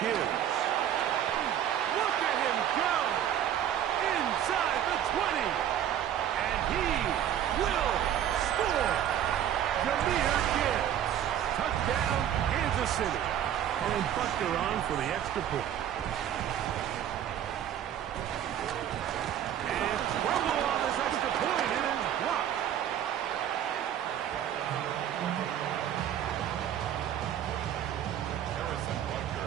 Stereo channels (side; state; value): left; quieter; 10.4 dB